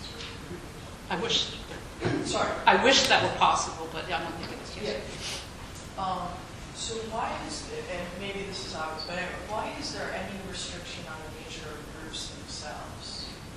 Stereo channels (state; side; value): identical; both; correlation 1.00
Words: I wish. Sorry. I wish that were possible, but I don't think it is. Yes. Yeah. So why is it, and maybe this is obvious, but anyway, why is there any restriction on the nature of groups themselves?